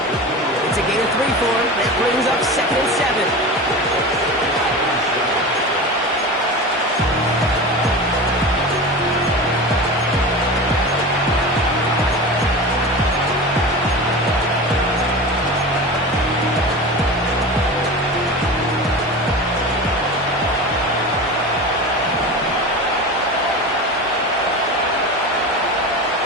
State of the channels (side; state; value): both; normal; correlation 0.29